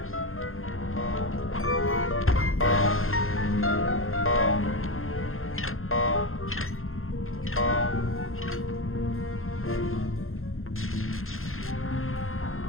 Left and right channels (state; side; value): late; right; 0.61 ms